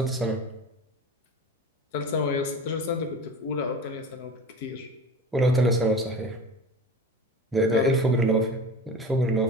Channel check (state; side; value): normal; both; correlation 0.34